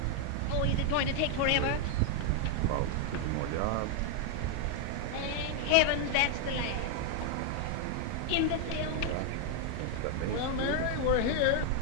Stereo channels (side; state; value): both; different; correlation 0.00